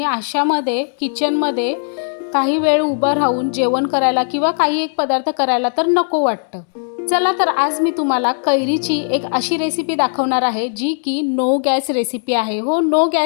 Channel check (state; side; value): silent; right; 68 dB below the other